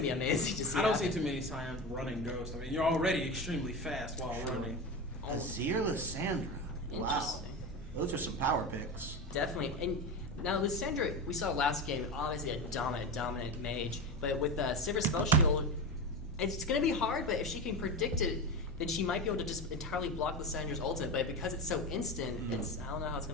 be amazing to see. I don't see too many Scions running Ghost. I mean, you're already extremely fast while running. Azir Lysandra. Wow. Those are some power picks. Definitely. And now Lysandra, we saw last game, obviously a dominant mage. But with Sivir Spell Shield, it's going to be hard, but if she can predict it, then she might be able to just entirely block Lysandra's ultimate. But because it's so instant, I don't know how it's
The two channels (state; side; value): normal; both; correlation 0.22